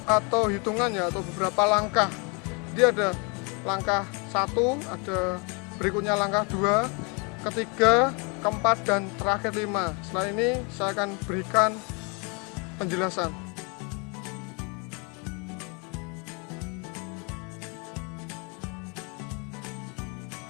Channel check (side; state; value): right; quieter; 32.9 dB